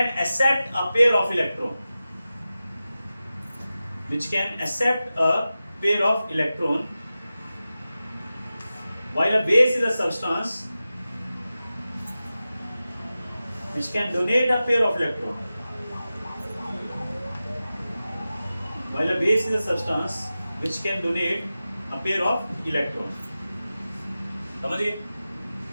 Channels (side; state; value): both; inverted; correlation -0.94